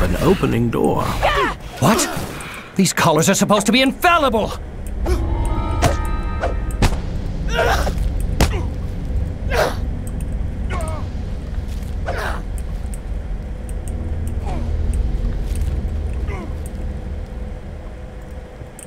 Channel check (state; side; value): identical; both; correlation 1.00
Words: an opening door. What? These collars are supposed to be infallible!